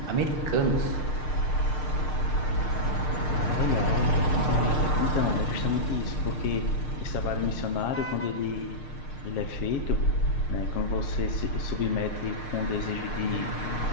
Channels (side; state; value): right; late; 6.6 ms